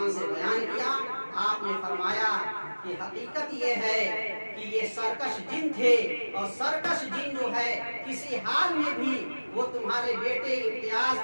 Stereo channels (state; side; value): inverted; both; correlation -1.00